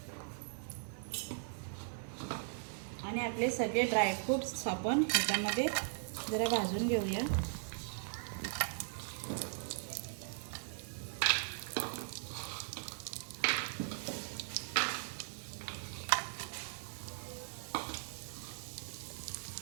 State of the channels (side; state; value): left; silent; digital silence